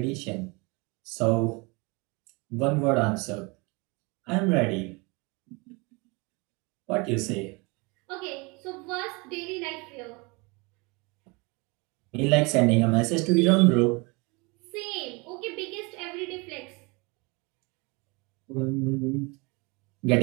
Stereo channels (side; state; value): left; quieter; 28.2 dB